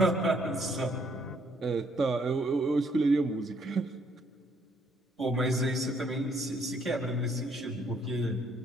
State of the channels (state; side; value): normal; both; correlation 0.67